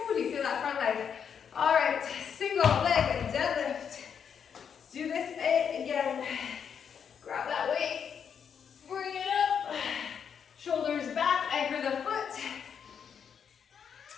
do you feel that front leg? All right, single leg deadlift. Let's do this again. Grab that weight. Bring it up. Shoulders back, anchor the foot.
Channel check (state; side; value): quieter; right; 7.4 dB